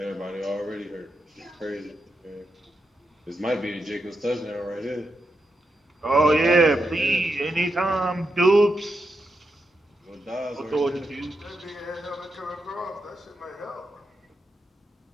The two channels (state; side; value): normal; both; correlation 0.85